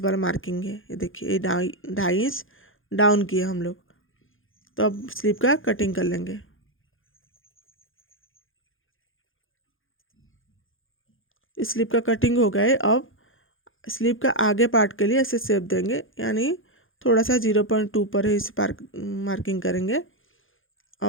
वाला मार्किंग है, ये देखिए ये 2.5 इंच डाउन किए हम लोग। तो अब स्लीव का कटिंग कर लेंगे। स्लीव का कटिंग हो गया है। अब स्लीव का आगे पार्ट के लिए ऐसे शेप देंगे, यानी थोड़ा सा 0.2 पर ही इसे मार्किंग करेंगे।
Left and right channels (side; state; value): right; late; 0.59 ms